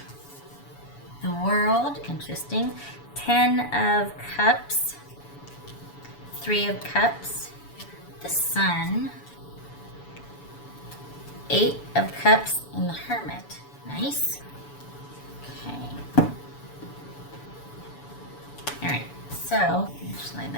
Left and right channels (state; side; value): late; right; 7.0 ms